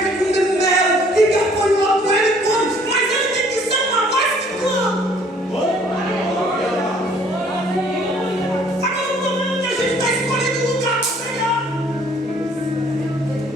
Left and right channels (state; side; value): normal; both; correlation 0.59